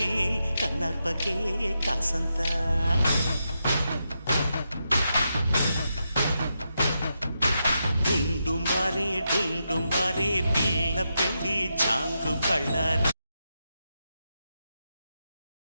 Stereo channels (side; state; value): both; inverted; correlation -0.85